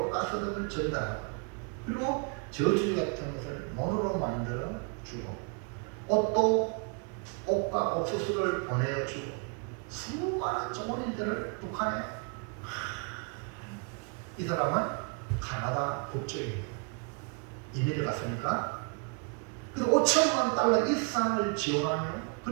등을 전달하고 그리고 저주리 같은 것을 mon으로 만들어 주고 옷과 옥수수를 보내주고 수많은 종원인들을 북한에 이 사람은 카나다 국적입니다. 이민을 갔으니까 그래서 $5,000만 이상을 지원하며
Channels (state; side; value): quieter; left; 36.4 dB